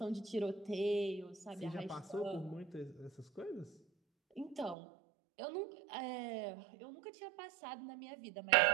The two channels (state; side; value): drops out; left; at 4.8 s